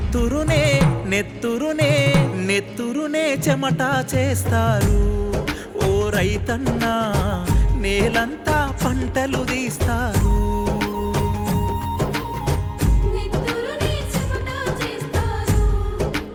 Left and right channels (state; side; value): identical; both; correlation 1.00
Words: నెత్తురునే నెత్తురునే చెమట చేస్తారు ఓ రైతన్నా నేలంతా పంటలు తీస్తారు